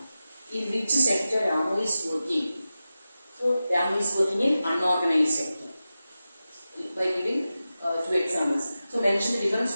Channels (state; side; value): inverted; both; correlation -0.93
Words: In which sector Ramu is working? So, Ramu is working in unorganized sector. By giving two examples. So, mention the